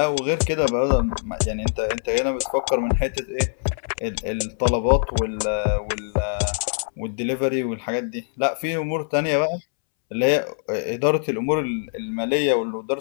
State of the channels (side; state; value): right; silent; 63 dB below the other